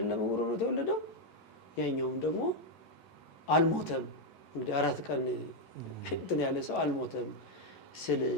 ዕውር ሆኖ የተወለደው። ያኛውም ደግሞ አልሞተም። እንግዲህ 4 ቀን እንትን ያለ ሰው አልሞተም ስል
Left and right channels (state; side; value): late; right; 11 ms